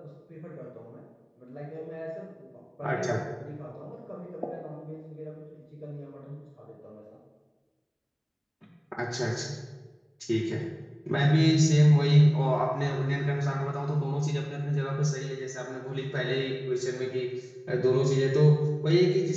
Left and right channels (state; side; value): identical; both; correlation 1.00